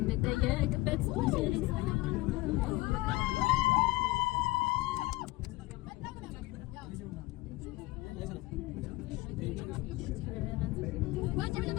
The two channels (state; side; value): quieter; right; 20.2 dB